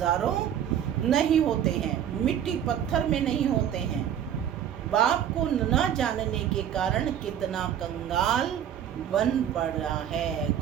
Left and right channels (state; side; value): quieter; left; 9.8 dB